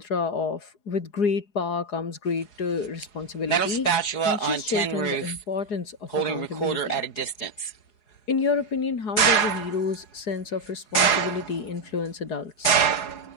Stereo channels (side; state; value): right; late; 4.8 ms